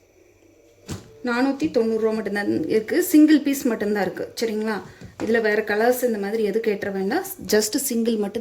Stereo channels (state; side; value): identical; both; correlation 1.00